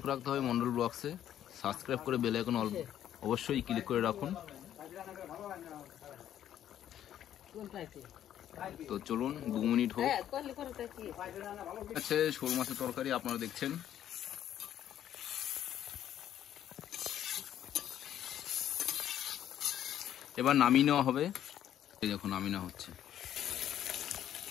রাখতে হবে মন্ডল ব্লগসে, সাবস্ক্রাইব করে বেল আইকন অবশ্যই ক্লিক করে রাখুন। তো চলুন 2 মিনিট হোক। আছে শোল মাছের তরকারি আপনারা দেখছেন। এবার নামিয়ে নেওয়া হবে। এই দেখুন নামিয়ে নেওয়া হচ্ছে।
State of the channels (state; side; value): quieter; right; 10.9 dB